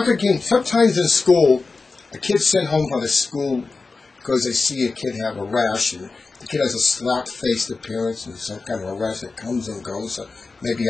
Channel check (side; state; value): right; quieter; 4.0 dB